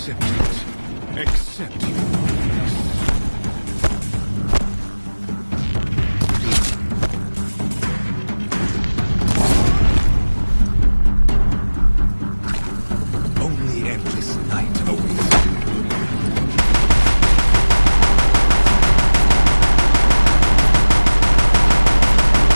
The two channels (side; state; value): both; inverted; correlation -1.00